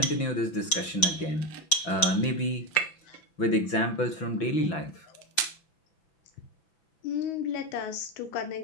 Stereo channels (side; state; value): right; late; 5.9 ms